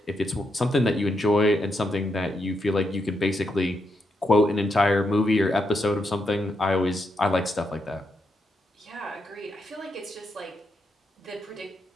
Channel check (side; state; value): both; normal; correlation 0.82